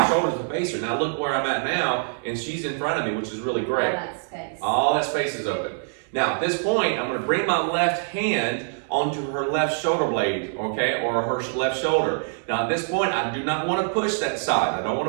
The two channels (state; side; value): silent; left; digital silence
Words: shoulders to face her. Now look where I'm at now, and she's in front of me, which is really great. All that space. All that space is open. Now at this point, I'm going to bring my left hand onto her left shoulder blade, or her left shoulder. Now at this point, I do not want to push that side. I don't want